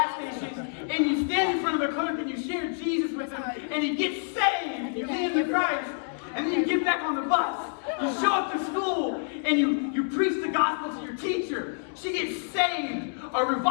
station, and you stand in front of the clerk, and you share Jesus with him, and he gets saved, and you lead him to Christ. And then you get back on the bus, you show up to school, and you preach the gospel to your teacher. She gets saved, a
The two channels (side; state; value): right; silent; digital silence